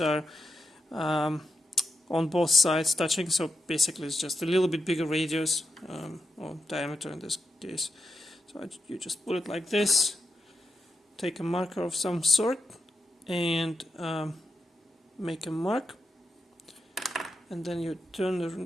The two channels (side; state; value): both; normal; correlation 0.86